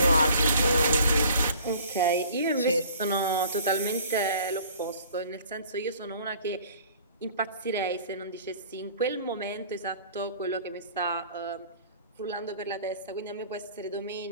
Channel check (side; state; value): both; inverted; correlation -0.51